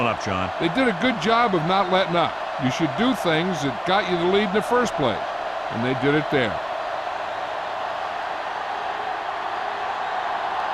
up, John. They did a good job of not letting up. You should do things that got you the lead in the first place, and they did it there.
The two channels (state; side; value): identical; both; correlation 1.00